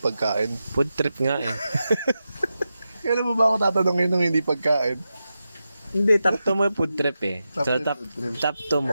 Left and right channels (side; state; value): both; inverted; correlation -0.90